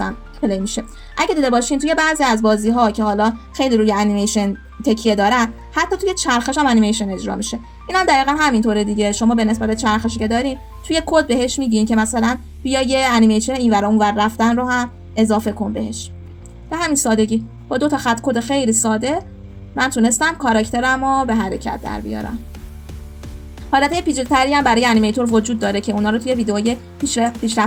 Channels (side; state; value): both; identical; correlation 1.00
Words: پلی میشه. اگه دیده باشین توی بعضی از بازی ها که حالا خیلی روی انیمیشن تکیه دارن، حتی توی چرخش هم انیمیشن اجرا میشه. اینم دقیقاً همینطوره دیگه. شما به نسبت چرخشی که دارین توی کد بهش میگین که مثلا بیا یه انیمیشن اینور اونور رفتن رو هم اضافه کن بهش. به همین سادگی با 2 تا خط کد خیلی ساده من تونستم کاراکترم رو به حرکت در بیارم. حالتهای پیچیده‌تری هم برای انیمیتور وجود داره که اونا رو توی ویدیوهای